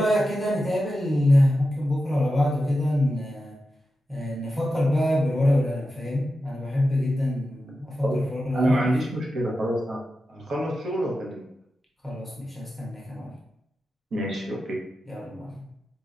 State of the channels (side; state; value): both; normal; correlation 0.91